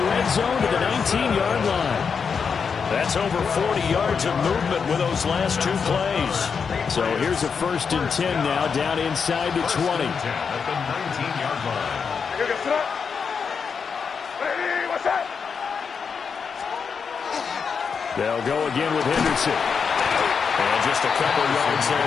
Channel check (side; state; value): right; quieter; 6.0 dB